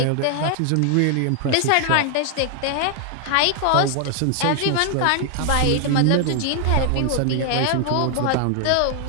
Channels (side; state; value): both; different; correlation 0.00